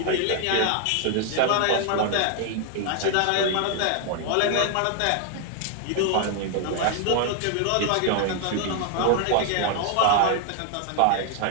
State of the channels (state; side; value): different; both; correlation 0.00